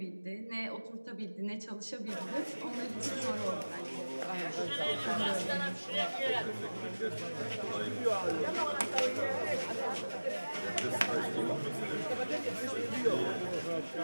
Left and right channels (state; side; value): inverted; both; correlation -1.00